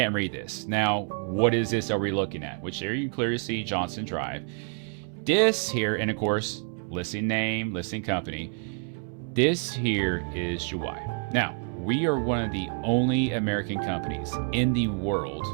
read this. Now, what is this are we looking at? Which there you clearly see Johnson Drive. This here, and of course, listing name, listing company. This here is Juwai. Now, we are one of the only American companies in the world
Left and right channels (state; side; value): quieter; left; 39.1 dB